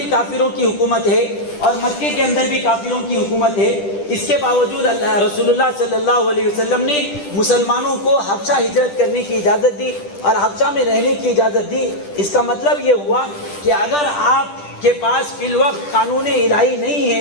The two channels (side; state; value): right; late; 10 ms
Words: کافروں کی حکومت ہے اور مکے کے اندر بھی کافروں کی حکومت ہے. اس کے باوجود رسول اللہ صلی اللہ علیہ وسلم نے مسلمانوں کو حبشہ ہجرت کرنے کی اجازت دی اور حبشہ میں رہنے کی اجازت دی. اس کا مطلب یہ ہوا کہ اگر آپ کے پاس فی الوقت قانون الہی نہیں